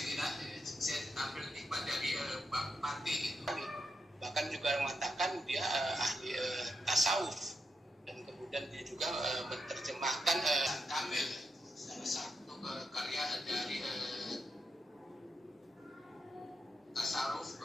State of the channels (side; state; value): both; normal; correlation 0.84